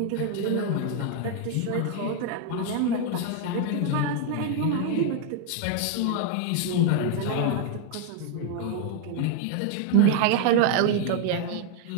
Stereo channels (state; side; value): different; both; correlation 0.00